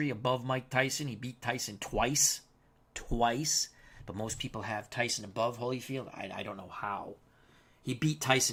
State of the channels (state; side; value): identical; both; correlation 1.00